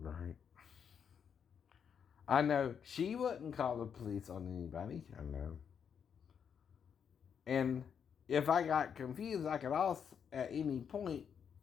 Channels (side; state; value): right; quieter; 7.4 dB